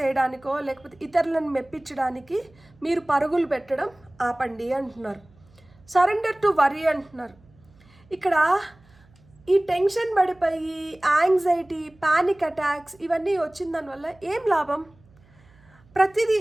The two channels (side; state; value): right; noise; hum, 29 dB below the sound